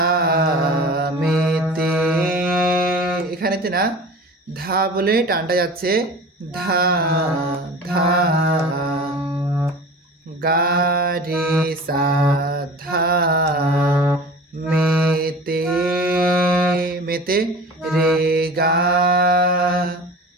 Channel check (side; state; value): both; normal; correlation 0.38